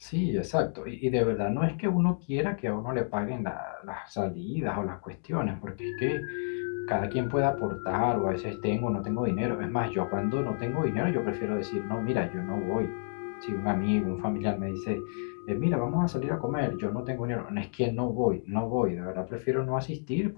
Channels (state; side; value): silent; right; digital silence